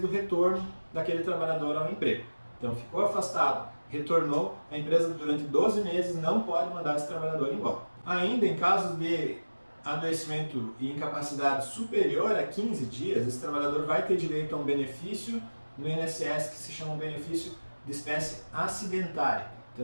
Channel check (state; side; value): inverted; both; correlation -1.00